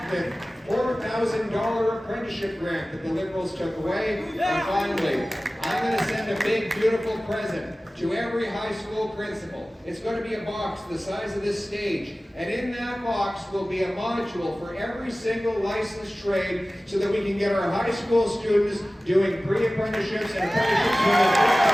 the $4,000 apprenticeship grant that the Liberals took away. And finally, I'm going to send a big, beautiful present to every high school principal. It's going to be a box the size of this stage. And in that box will be a module for every single licensed trade so that we can get our high school students doing pre-apprenticeships and apprenticeships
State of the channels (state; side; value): normal; both; correlation 0.97